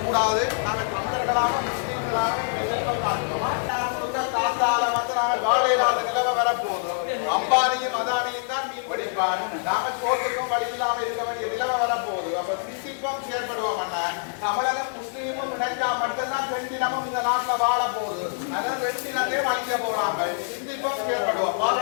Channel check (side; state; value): right; silent; digital silence